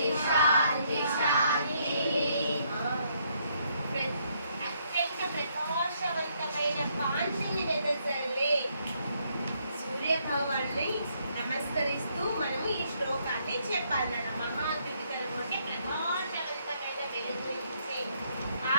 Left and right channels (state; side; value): inverted; both; correlation -0.72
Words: శాంతి శాంతి. అత్యంత ప్రకాశవంతమైన కాంతిని వెదజల్లే సూర్య భగవాన్ని నమస్కరిస్తూ మనము ఈ శ్లోకాన్ని చెప్పాలన్న. మహాద్యుతికరం అంటే ప్రకాశవంతమైన వెలుగు ఇచ్చే